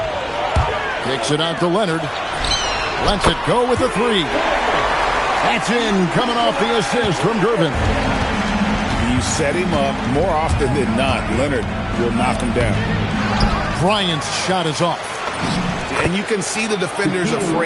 Kicks it out to Leonard. Lets it go with a 3. That's in, coming off the assist from Gervin. You set him up more often than not. Leonard will knock him down. Bryant's shot is off. And you can see the defenders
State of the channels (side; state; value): both; identical; correlation 1.00